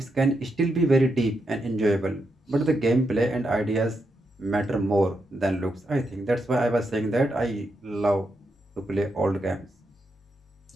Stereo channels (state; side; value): normal; both; correlation 0.83